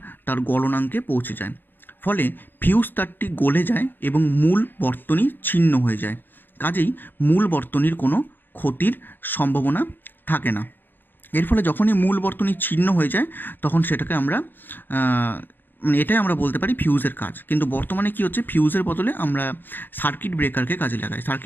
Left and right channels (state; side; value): late; right; 0.093 ms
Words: তার গলনাঙ্কে পৌঁছে যায়। ফলে ফিউজ তারটি গলে যায় এবং মূল বর্তনী ছিন্ন হয়ে যায়। কাজেই মূল বর্তনীর কোনো ক্ষতির সম্ভাবনা থাকে না। এর ফলে যখনই মূল বর্তনী ছিন্ন হয়ে যায়, তখন সেটাকে আমরা এটাই আমরা বলতে পারি ফিউজের কাজ। কিন্তু বর্তমানে কি হচ্ছে, ফিউজের বদলে আমরা সার্কিট ব্রেকারকে কাজে লাগাই।